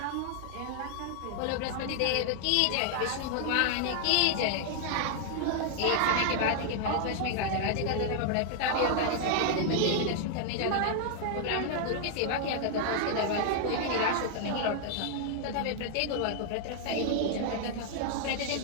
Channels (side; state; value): both; different; correlation 0.00